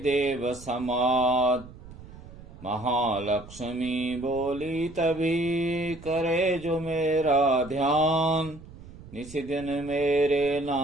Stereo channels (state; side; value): noise; right; rumble, 17 dB below the sound